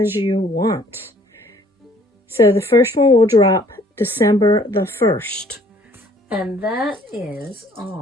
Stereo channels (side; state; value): both; normal; correlation 0.59